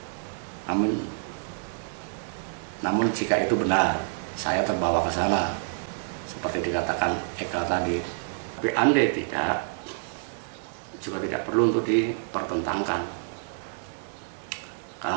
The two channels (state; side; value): silent; left; digital silence